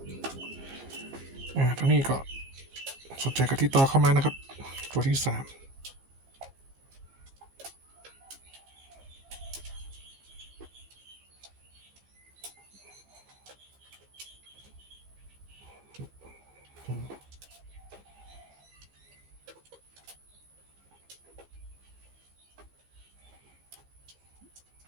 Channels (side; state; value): left; late; 15 ms